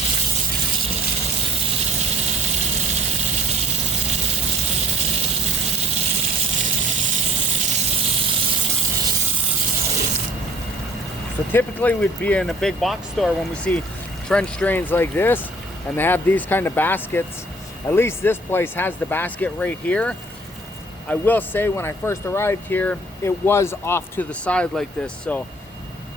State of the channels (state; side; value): normal; both; correlation 0.53